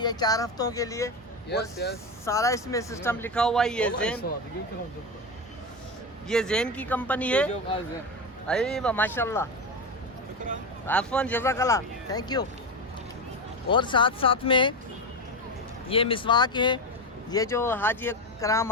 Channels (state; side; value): normal; both; correlation 0.17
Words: 4 ہفتوں کے لیے اور سارا اس میں سسٹم لکھا ہوا ہے یہ زین کی کمپنی ہے ایوہ ماشاءاللہ عفواً جزاک اللہ تھینک یو اور ساتھ میں یہ مسواک ہے یہ جو حاجی کرام